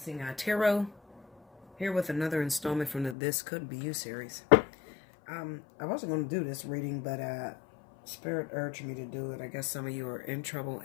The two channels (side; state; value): right; drops out; at 3.2 s